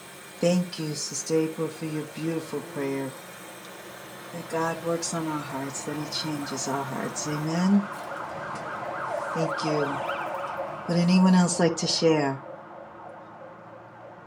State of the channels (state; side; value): identical; both; correlation 1.00